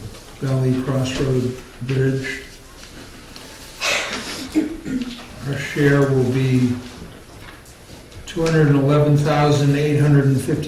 Valley Crossroad Bridge. Our share will be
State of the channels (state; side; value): identical; both; correlation 1.00